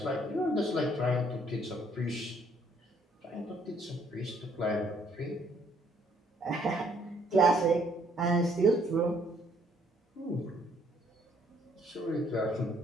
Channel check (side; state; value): both; normal; correlation 0.66